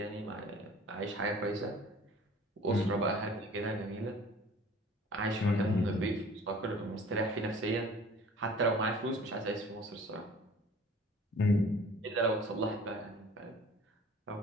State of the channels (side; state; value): both; normal; correlation 0.48